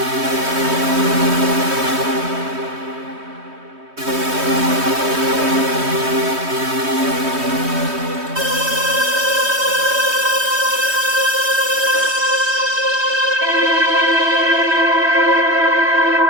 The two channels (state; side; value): late; left; 3.2 ms